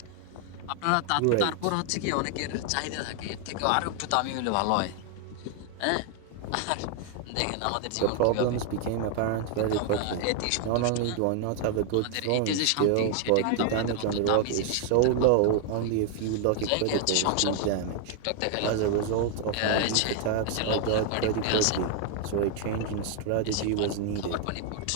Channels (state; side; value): different; both; correlation 0.00